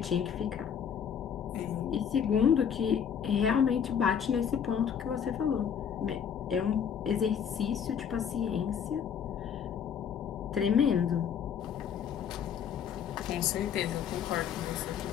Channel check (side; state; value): right; quieter; 7.9 dB